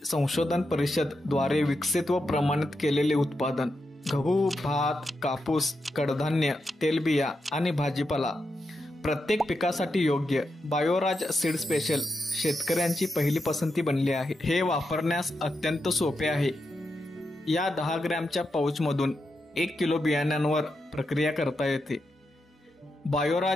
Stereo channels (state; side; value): normal; both; correlation 0.86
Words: संशोधन परिषद द्वारे विकसित व प्रमाणित केलेले उत्पादन. गहू, भात, कापूस, कडधान्य, तेलबिया आणि भाजीपाला प्रत्येक पिकासाठी योग्य बायोराज सीड स्पेशल शेतकऱ्यांची पहिली पसंती बनली आहे. हे वापरण्यास अत्यंत सोपे आहे. या 10 ग्रॅमच्या पाऊचमधून 1 किलो बियाण्यांवर प्रक्रिया करता येते.